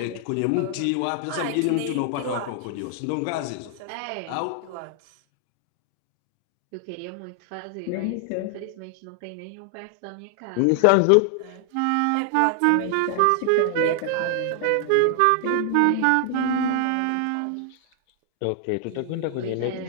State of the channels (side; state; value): both; different; correlation 0.00